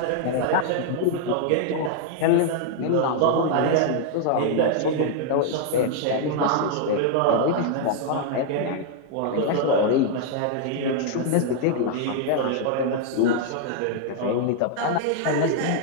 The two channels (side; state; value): both; different; correlation 0.00